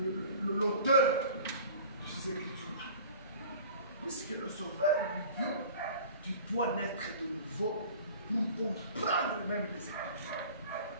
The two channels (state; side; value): inverted; both; correlation -0.43